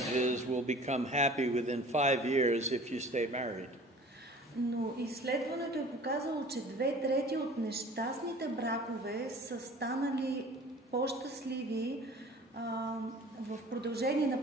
will become happy within 5 years if you stay married. но изследването е показало, че 2/3 от нещастните бракове са станали по-щастливи в продължение на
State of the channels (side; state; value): both; normal; correlation 0.45